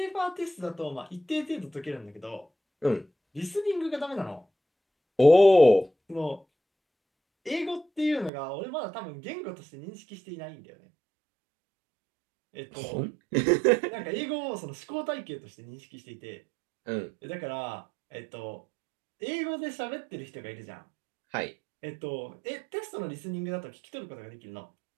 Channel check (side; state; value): left; drops out; at 8.3 s